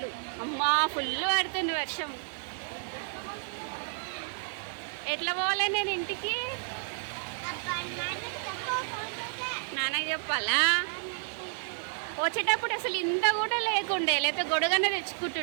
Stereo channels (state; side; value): silent; left; digital silence